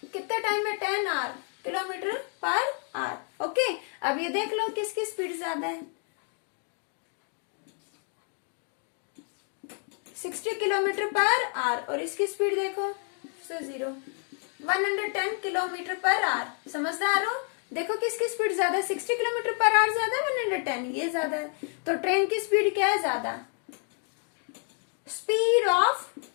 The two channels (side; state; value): right; quieter; 38.8 dB